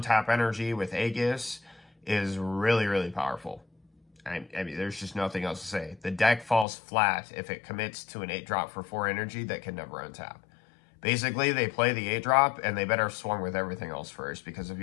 energy with Aegis is really, really powerful. I mean, there's just nothing else to say. The deck falls flat if it commits to an 8-drop for 4 energy that can never untap. Basically, they play the 8-drop, and they better swung with everything else first, because if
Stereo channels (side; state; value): right; drops out; at 6.7 s